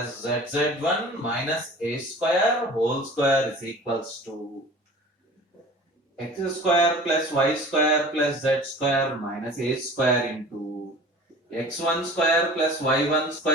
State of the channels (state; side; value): normal; both; correlation 0.42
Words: zz1 minus a square whole square is equals to x square plus y square plus z square minus a square into x1 square plus y1